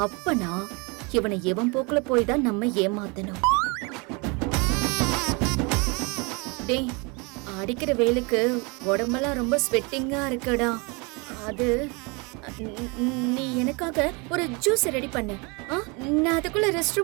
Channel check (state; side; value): quieter; left; 29.7 dB